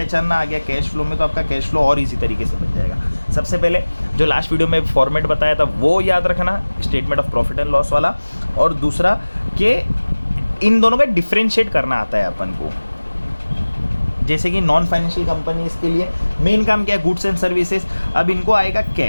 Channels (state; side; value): inverted; both; correlation -1.00